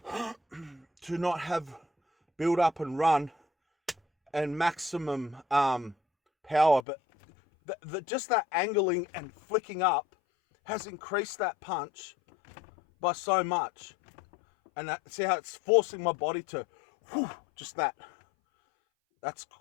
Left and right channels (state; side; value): drops out; right; at 6.9 s